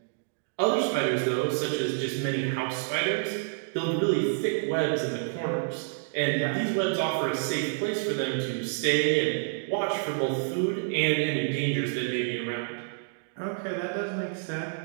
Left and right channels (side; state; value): left; silent; digital silence